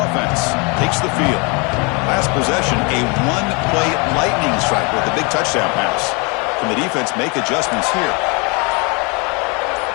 takes the field. Last possession, a one-play lightning strike with a big touchdown pass. Can the defense make adjustments here?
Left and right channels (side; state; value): right; quieter; 30.8 dB